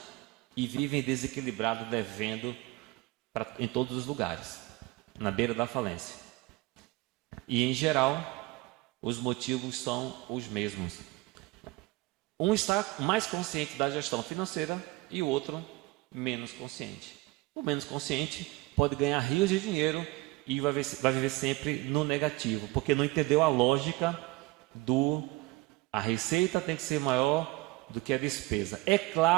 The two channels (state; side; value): quieter; left; 20.9 dB